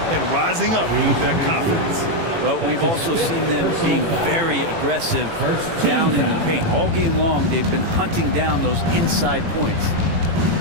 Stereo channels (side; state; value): left; late; 18 ms